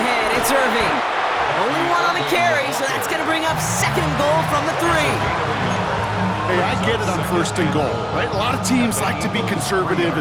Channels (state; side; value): identical; both; correlation 1.00